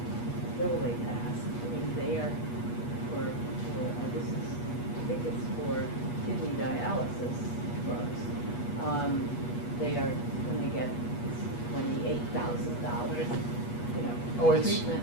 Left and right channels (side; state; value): right; late; 8.3 ms